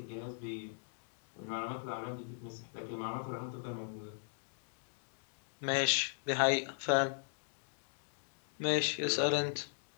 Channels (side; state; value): right; silent; digital silence